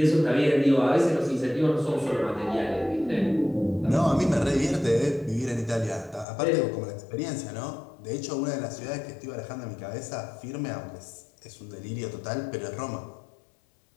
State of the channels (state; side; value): drops out; right; at 6.2 s